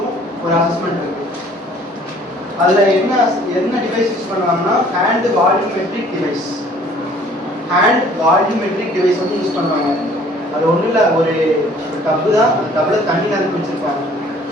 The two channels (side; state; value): both; normal; correlation 0.55